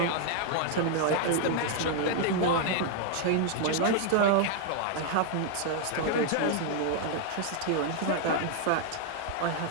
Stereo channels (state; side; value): different; both; correlation 0.00